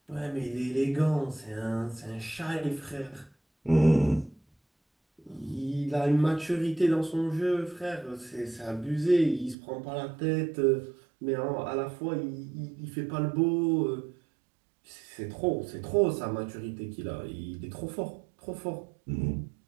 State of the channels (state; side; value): drops out; left; at 9.6 s